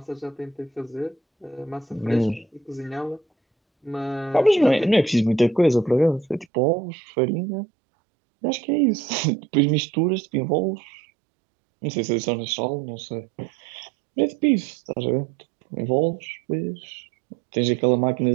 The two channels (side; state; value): left; drops out; at 6.5 s